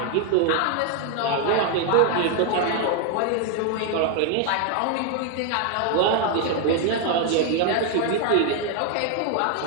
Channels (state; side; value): different; both; correlation 0.00